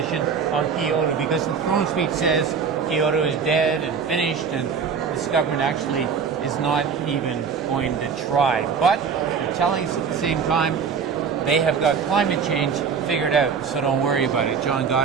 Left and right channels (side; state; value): left; quieter; 6.2 dB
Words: on Kyoto, because the throne speech says Kyoto is dead and finished, and this government actually is not even going to try. But they're telling us at the same time they have got climate change figured out, so don't worry about it. John